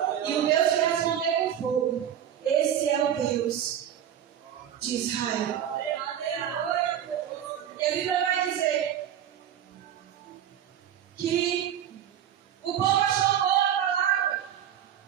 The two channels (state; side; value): quieter; left; 9.9 dB